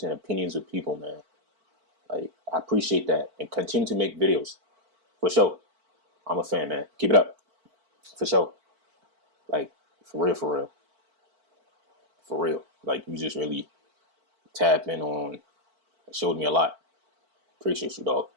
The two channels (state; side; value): late; left; 4.5 ms